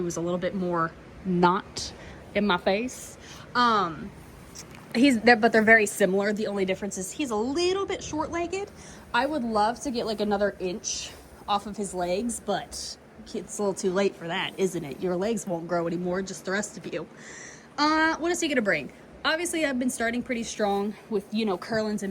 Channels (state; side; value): identical; both; correlation 1.00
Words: was a little bit more not in my face. But they're very similar. The only difference is he's a little bit short-legged. I would love to get like another inch off of his legs, but it's a little too late for that, isn't it? Your legs won't grow anymore, just the rest of you. What is he going to bring? Obviously, I've been starting pretty strong with, you know, Kurlins